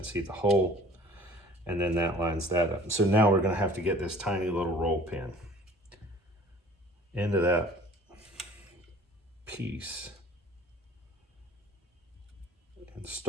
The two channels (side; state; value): both; normal; correlation 0.50